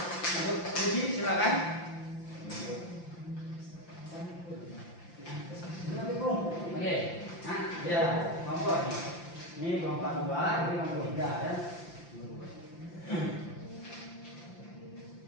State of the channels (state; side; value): late; right; 5.8 ms